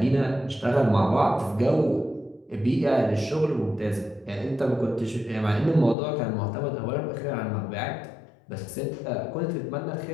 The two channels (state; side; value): drops out; right; at 6.0 s